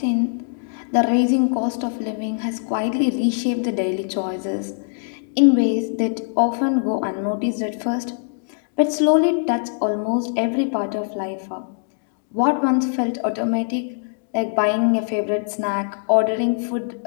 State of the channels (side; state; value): right; silent; digital silence